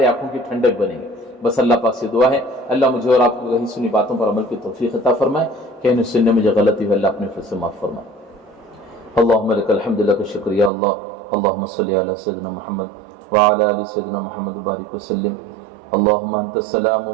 आंखों की ठंडक बनेंगे। बस अल्लाह पाक से दुआ है, अल्लाह मुझे और आपको कहीं सुनी बातों पर अमल की तौफीक अता फरमाए, कहने सुनने में जो गलती है अल्लाह अपने फिर से माफ फरमाए। अल्लाहुम्मा लकल हम्दु लक शुक्रिया अल्लाह, अल्लाहुम्मा सल्लि अला सय्यिदिना मुहम्मद व अला आलि सय्यिदिना मुहम्मद व बारिक वसल्लिम। अल्लाहुम्मा अंतस सलाम व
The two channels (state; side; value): drops out; left; at 10.7 s